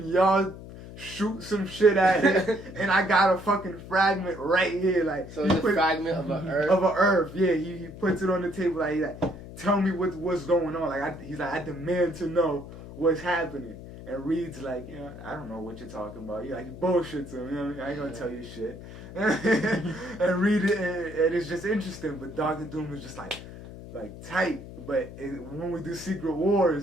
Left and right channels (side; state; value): left; noise; hum, 14 dB below the sound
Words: y'all shoot some shit at it, and I got a fucking fragment right here. Like, so it's a fragment of an Earth. Of an Earth, yeah. He puts it on the table like, tell me what's going on. Like, he's like, I demand to know what's happening. And Reed's like, you know, I don't know what you're talking about. He like bullshits him. You know what I mean? I ain't gonna tell you shit. And Reed, and it's just interesting. But Doctor Doom is just like tight. But when we do Secret